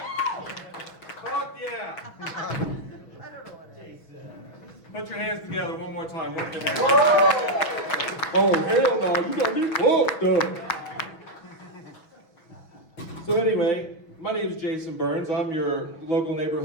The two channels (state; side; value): late; right; 6.2 ms